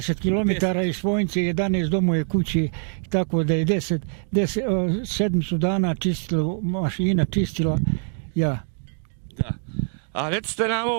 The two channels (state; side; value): silent; left; 59 dB below the other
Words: km iz Svojnice, 11 do moje kuće, tako da je 7 dana čistila, mašina čistila, ja. Da. A recite nam